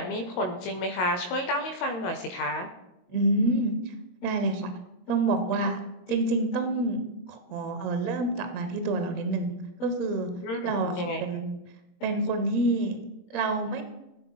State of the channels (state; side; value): late; right; 22 ms